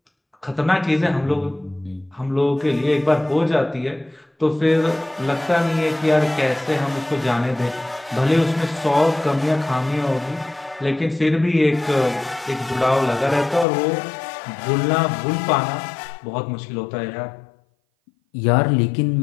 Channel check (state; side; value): drops out; right; at 13.7 s